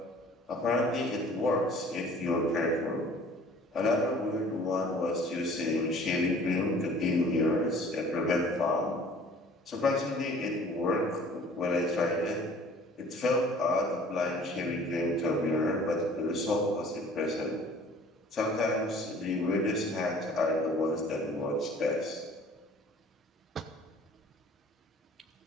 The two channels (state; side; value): normal; both; correlation 0.50